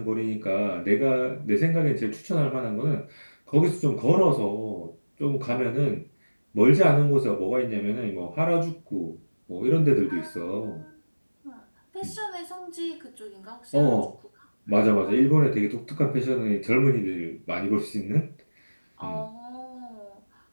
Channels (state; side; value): inverted; both; correlation -1.00